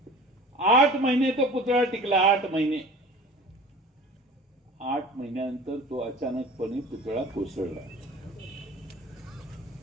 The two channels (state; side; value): normal; both; correlation 0.42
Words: 8 महिने तो पुतळा टिकला. 8 महिने. 8 महिन्यानंतर तो अचानकपणे पुतळा कोसळला.